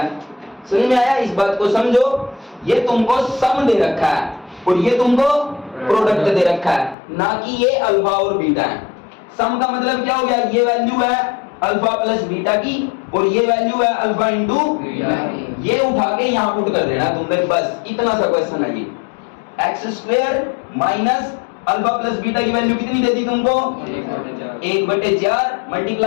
समझ में आया, इस बात को समझो। ये तुमको सम दे रखा है और ये तुमको प्रोडक्ट दे रखा है, ना कि ये अल्फा और बीटा है। सम का मतलब क्या हो गया, ये वैल्यू है अल्फा प्लस बीटा की और ये वैल्यू है अल्फा इंटू, ये उठा के यहां पुट कर देना तुमने, बस इतना सा क्वेश्चन है ये। X square minus alpha plus beta की वैल्यू कितनी दे दी तुमको, 1/4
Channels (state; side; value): drops out; right; at 7.0 s